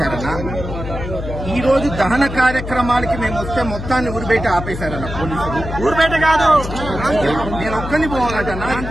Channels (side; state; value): left; noise; hum, 7 dB below the sound